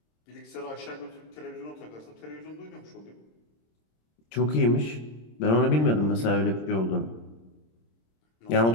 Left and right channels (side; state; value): right; late; 26 ms